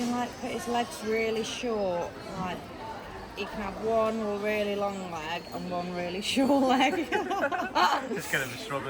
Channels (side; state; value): both; identical; correlation 1.00